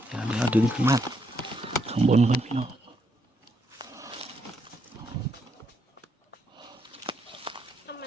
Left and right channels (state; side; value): normal; both; correlation 0.77